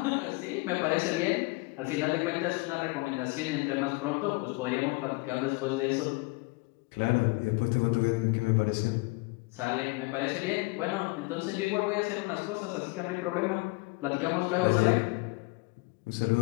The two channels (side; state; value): right; quieter; 25.7 dB